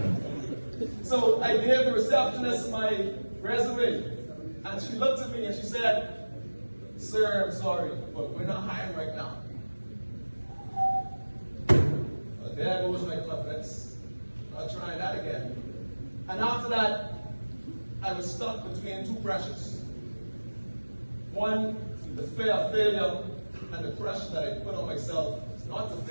So I gave the receptionist my resume, and she looked at me and she said, sir, I'm sorry, but we're not hiring right now. Well, there goes my confidence. I'll try that again. And after that, I was stuck between two pressures. One, the fear of failure and the pressure that I put on myself not to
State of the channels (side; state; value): both; inverted; correlation -1.00